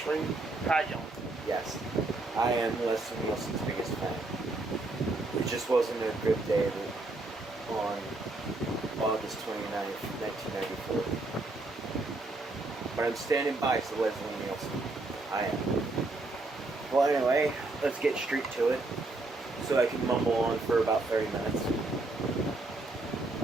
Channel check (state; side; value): quieter; left; 3.1 dB